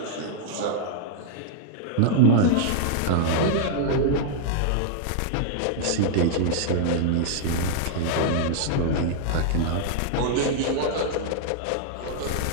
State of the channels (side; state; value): both; different; correlation -0.01